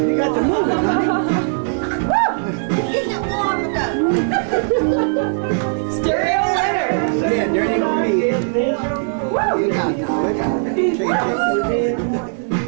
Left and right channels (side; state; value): left; silent; 67 dB below the other